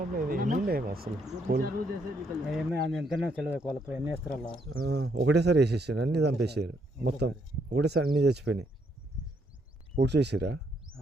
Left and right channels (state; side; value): normal; both; correlation 0.73